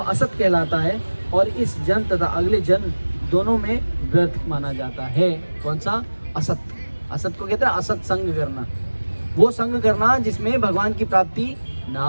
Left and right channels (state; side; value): inverted; both; correlation -1.00